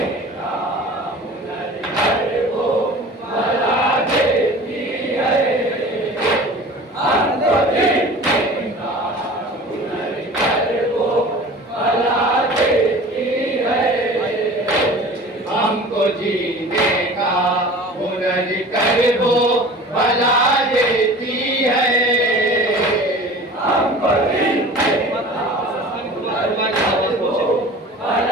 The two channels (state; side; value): normal; both; correlation 0.41